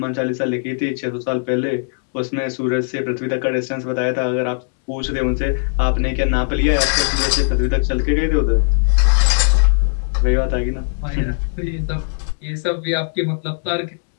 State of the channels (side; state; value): right; silent; digital silence